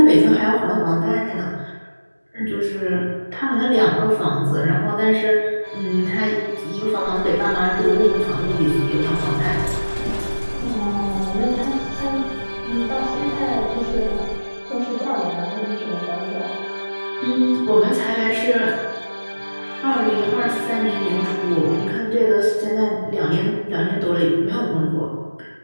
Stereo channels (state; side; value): inverted; both; correlation -1.00